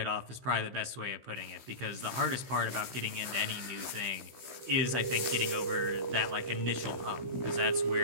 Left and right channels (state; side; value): late; left; 16 ms